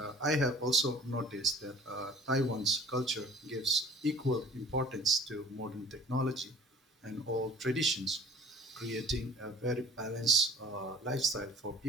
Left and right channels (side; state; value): both; normal; correlation 0.46